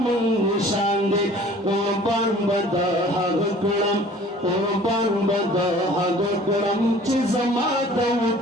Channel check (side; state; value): both; normal; correlation 0.49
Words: نشان دی قربان بدا هغه کړم قربان بدا هغه کړم چې زما د